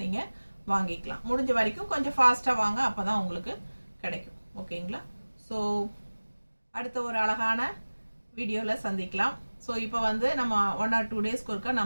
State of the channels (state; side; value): inverted; both; correlation -1.00